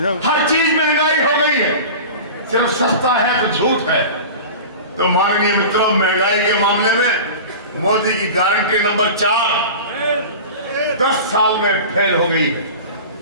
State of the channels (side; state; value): both; inverted; correlation -0.34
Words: हर चीज महंगाई हो गई है। सिर्फ सस्ता है तो झूठ है। तो माननीय मित्रों, महंगाई के मामले में मोदी की गारंटी नंबर 4 10 साल में फेल हो गई है।